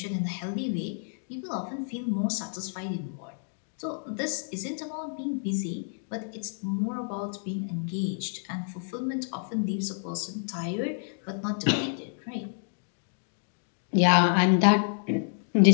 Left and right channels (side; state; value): right; silent; digital silence